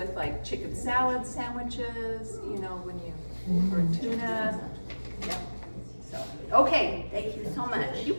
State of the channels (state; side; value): inverted; both; correlation -1.00